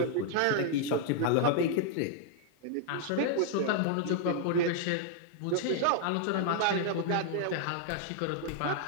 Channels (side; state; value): both; different; correlation 0.00